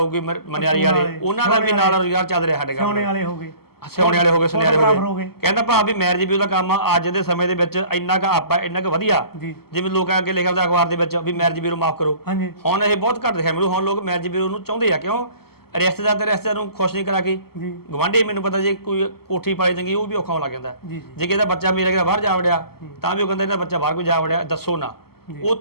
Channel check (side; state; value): right; late; 0.95 ms